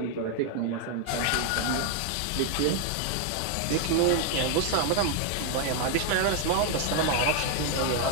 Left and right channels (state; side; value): different; both; correlation 0.01